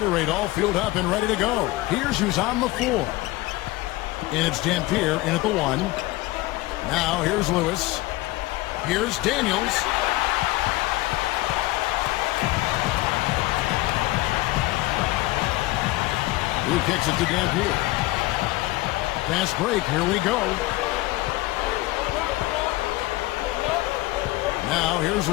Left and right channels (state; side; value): quieter; right; 19.5 dB